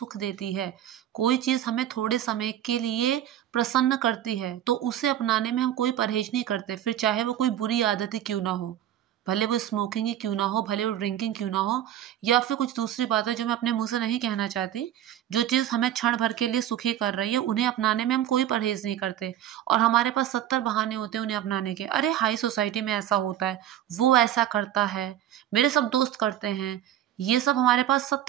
देती है, कोई चीज़ हमें थोड़े समय के लिए प्रसन्न करती है, तो उसे अपनाने में हम कोई परहेज नहीं करते, फिर चाहे वो कोई बुरी आदत ही क्यों ना हो। भले वो स्मोकिंग ही क्यों ना हो, भले वो ड्रिंकिंग क्यों ना हो, या फिर कुछ दूसरी बातें जो मैं अपने मुंह से नहीं कहना चाहती। जो चीज़ हमें क्षण भर के लिए सुखी कर रही है, उन्हें अपनाने में हम कोई परहेज नहीं करते। और हमारे पास 70 बहाने होते हैं उन्हें अपनाने के। अरे, हाई सोसाइटी में ऐसा होता है, वो ऐसा करता है, मेरे सब दोस्त करते हैं। ये सब हमारे पास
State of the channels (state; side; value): quieter; left; 11.6 dB